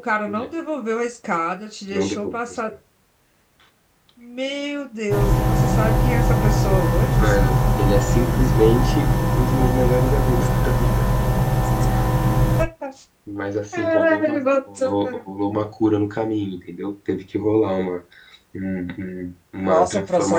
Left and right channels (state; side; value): identical; both; correlation 1.00